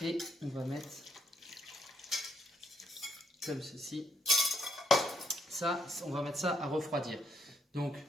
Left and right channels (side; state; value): both; normal; correlation 0.74